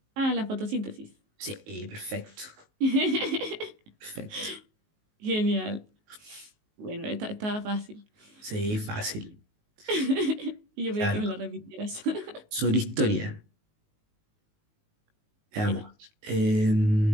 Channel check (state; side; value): late; left; 19 ms